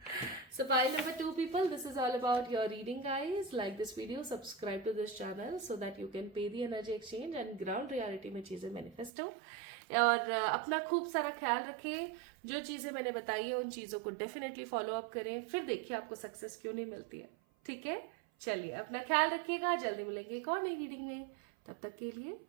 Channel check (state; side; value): drops out; left; at 9.1 s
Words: So pile number 2 people, this is all about your reading guys. Like this video, subscribe to this channel so that you can pay the energy exchange and ground reality में चीजें manifest हो। और अपना खूब सारा ख्याल रखें, जो चीजें मैंने बताई है उन चीजों को डेफिनेटली फॉलो अप करें, फिर देखिए आपको सक्सेस क्यों नहीं मिलती है, ठीक है। चलिए अपना ख्याल रखिएगा, जल्दी मिलेंगे एक और नई रीडिंग में, तब तक के लिए